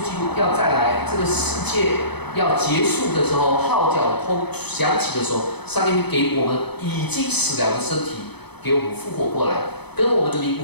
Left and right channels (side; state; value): right; late; 0.98 ms